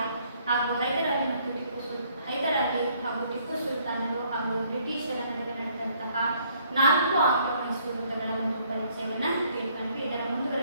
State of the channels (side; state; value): both; inverted; correlation -0.65